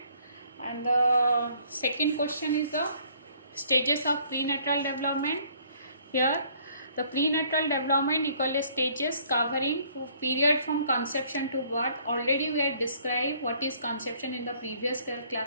and the second question is the stages of prenatal development. Here, the prenatal development equal stages covering period from conception to birth. Already we had described what is conception in the previous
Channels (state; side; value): inverted; both; correlation -0.61